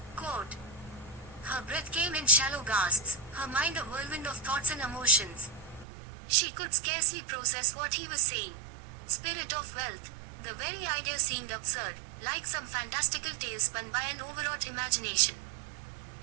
Quote. Her breath came in shallow gasps, her mind a whirlwind of thoughts and emotions. She could scarcely process what he was saying. Spirit of wealth. The very idea seemed absurd, like some fantastical tale spun by an overwrought imagination.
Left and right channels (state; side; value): drops out; left; at 5.9 s